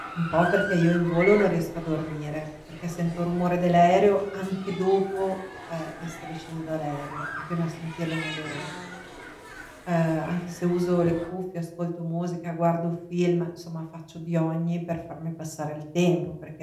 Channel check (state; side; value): identical; both; correlation 1.00